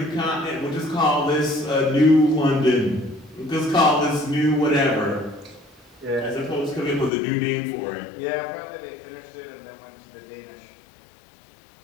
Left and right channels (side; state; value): right; drops out; at 7.1 s